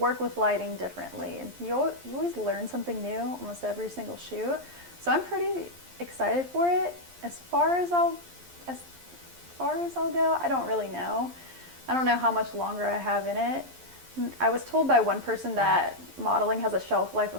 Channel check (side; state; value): left; late; 11 ms